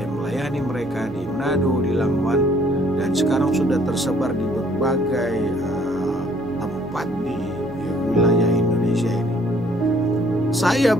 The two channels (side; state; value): right; noise; hum, 22 dB below the sound